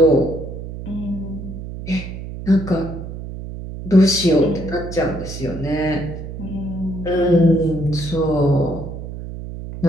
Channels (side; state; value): right; noise; hum, 9 dB below the sound